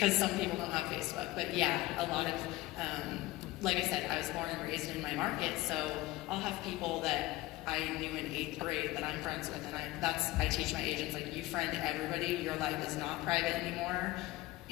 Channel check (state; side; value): quieter; right; 18.5 dB